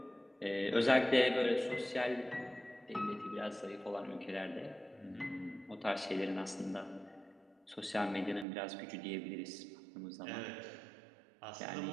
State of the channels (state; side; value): drops out; left; at 8.5 s